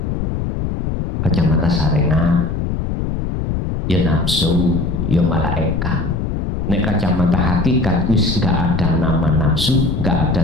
ya nafsu, ya malaikat. Nek kacamata hakikat wis nggak ada nama nafsu, nggak ada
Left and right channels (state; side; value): noise; left; rumble, 2 dB below the sound